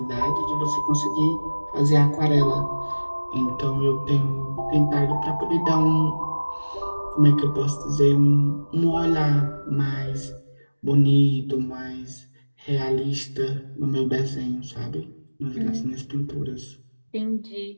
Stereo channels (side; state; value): both; inverted; correlation -1.00